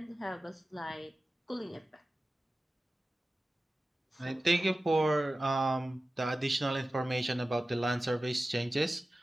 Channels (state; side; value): normal; both; correlation 0.95